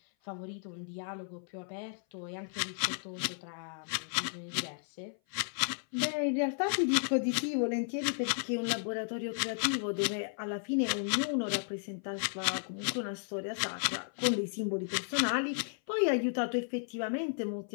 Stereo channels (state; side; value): silent; right; 55 dB below the other